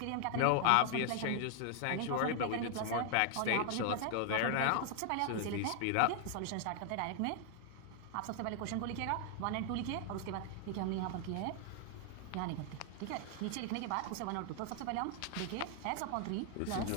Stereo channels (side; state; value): both; different; correlation 0.00